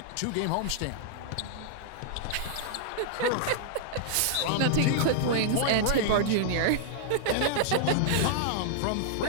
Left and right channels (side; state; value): both; different; correlation -0.01